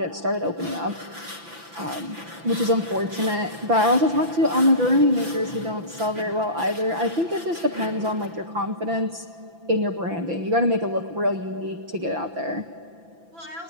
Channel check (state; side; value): late; left; 5.9 ms